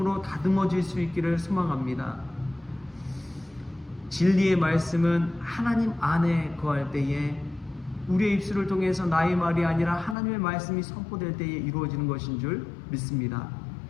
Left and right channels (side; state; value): right; drops out; at 10.2 s